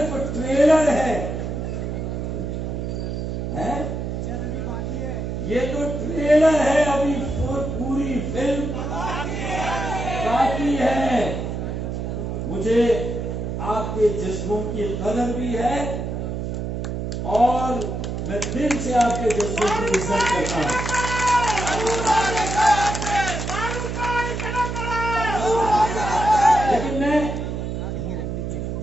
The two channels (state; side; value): noise; right; hum, 3 dB below the sound